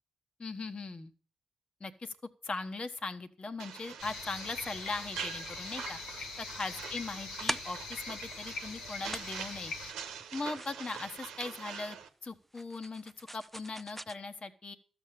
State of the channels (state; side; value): normal; both; correlation 0.76